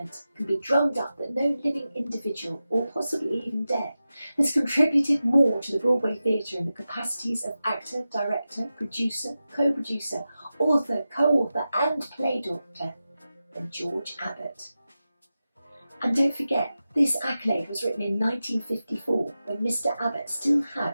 can be drummed up that no living individual, or possibly even dead, has contributed more to the Broadway theatre in the capacities of actor, director, producer, co-producer, author, co-author and play doctor than George Abbott. And don't forget, this accolade was written in 1954, when Mr. Abbott still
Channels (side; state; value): both; inverted; correlation -0.93